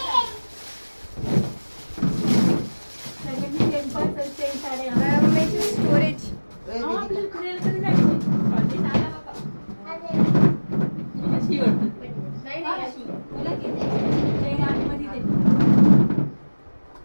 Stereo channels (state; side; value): inverted; both; correlation -1.00